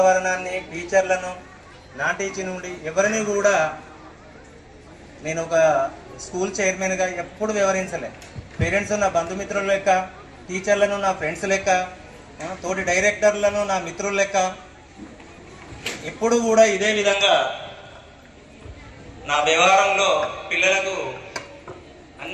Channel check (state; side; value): identical; both; correlation 1.00